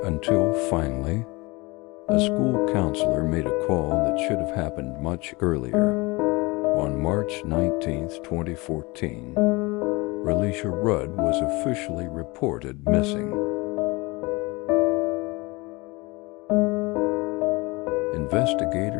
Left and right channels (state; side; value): quieter; right; 24.4 dB